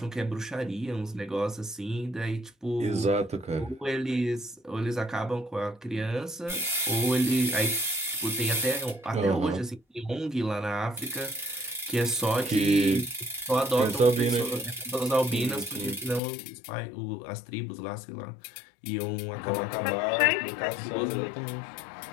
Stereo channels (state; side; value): drops out; right; at 16.2 s